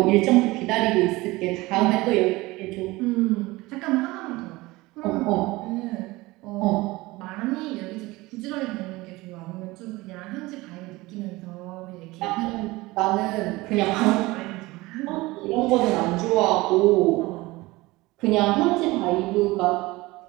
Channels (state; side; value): quieter; left; 20.8 dB